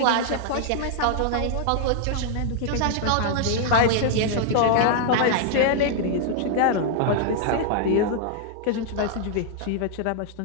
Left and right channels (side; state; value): both; different; correlation -0.01